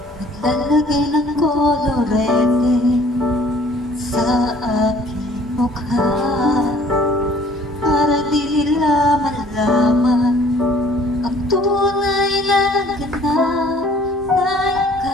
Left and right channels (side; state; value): both; normal; correlation 0.55